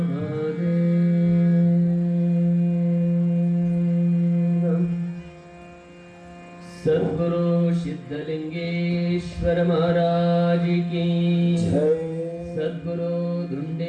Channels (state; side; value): identical; both; correlation 1.00